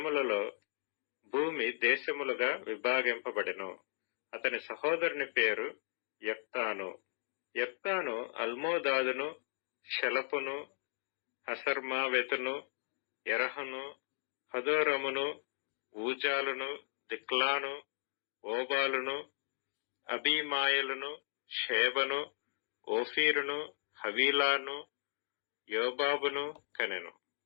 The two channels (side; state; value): right; silent; digital silence